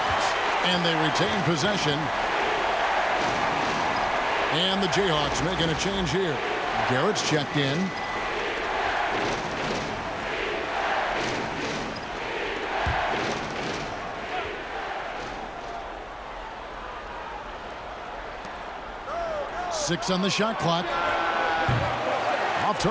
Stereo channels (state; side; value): identical; both; correlation 1.00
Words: And they retain possession. And the Jayhawks making a change here. Garrett's checked in. 6 on the shot clock. Off